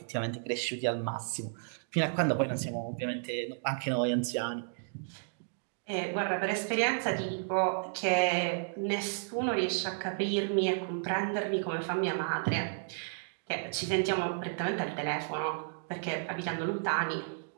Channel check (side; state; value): left; silent; digital silence